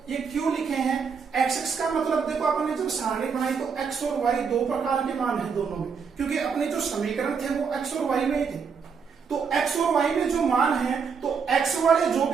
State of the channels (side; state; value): left; quieter; 6.0 dB